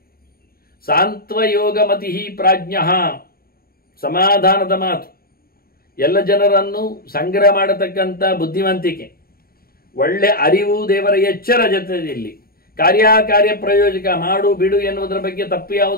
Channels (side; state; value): right; late; 0.43 ms